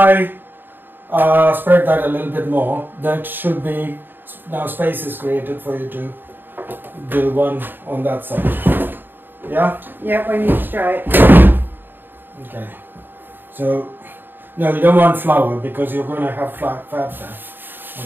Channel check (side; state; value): left; late; 0.094 ms